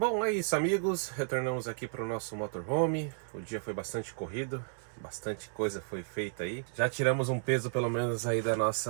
é isso, amigos. Retornamos aqui para o nosso motorhome. O dia foi bastante corrido, bastante coisa foi feita aí. Já tiramos um peso pelo menos aí da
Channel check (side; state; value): left; silent; 56 dB below the other